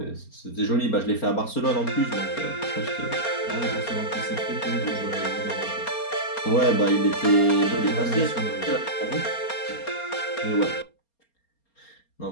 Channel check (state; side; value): late; right; 4.3 ms